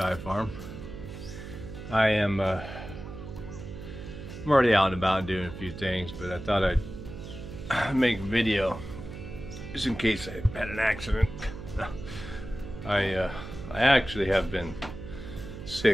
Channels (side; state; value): right; noise; hum, 11 dB below the sound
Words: farm. I'm already out and about doing a few things, but I thought I'd make a video just in case I had an accident. I actually have been